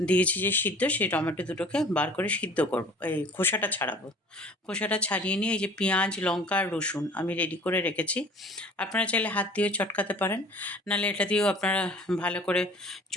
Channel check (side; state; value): both; normal; correlation 0.47